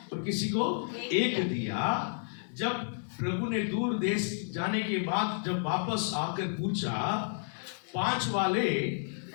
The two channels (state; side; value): silent; right; 57 dB below the other